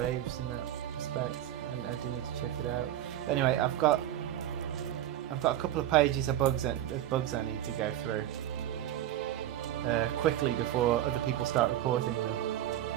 in that respect, and I do need to check it out. But anyway, I've got a couple of pages of bugs I need to go through quickly before other people start reporting them,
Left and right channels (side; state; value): left; quieter; 12.1 dB